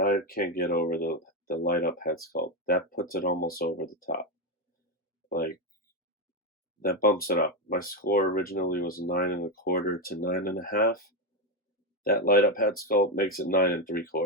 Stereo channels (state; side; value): normal; both; correlation 0.08